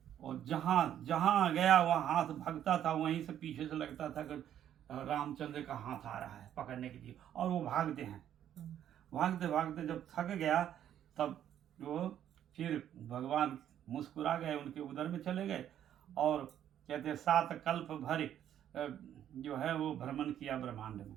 और जहाँ जहाँ गया वहाँ हाथ भागता था, वहीं से पीछे से लगता था कि रामचंद्र का हाथ आ रहा है पकड़ने के लिए, और वो भागते हैं। भागते भागते जब थक गया तब वो फिर भगवान मुस्कुरा गए, उनके उदर में चले गए और कहते हैं 7 कल्प भर जो है वो भ्रमण किया ब्रह्मांड में,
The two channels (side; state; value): left; quieter; 10.5 dB